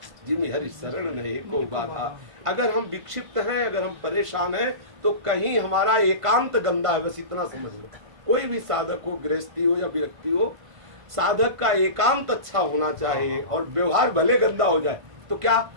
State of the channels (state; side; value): late; left; 1.5 ms